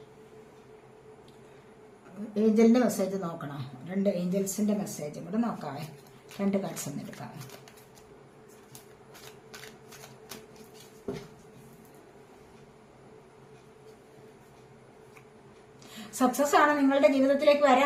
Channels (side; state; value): both; identical; correlation 1.00